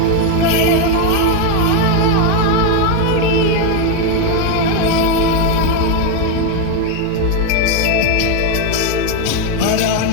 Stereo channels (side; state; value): both; different; correlation 0.02